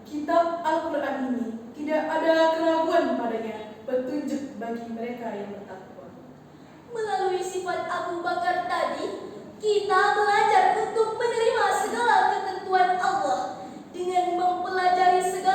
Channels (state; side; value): identical; both; correlation 1.00